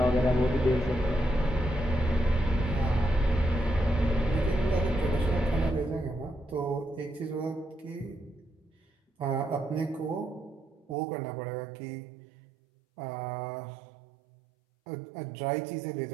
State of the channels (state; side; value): drops out; left; at 11.0 s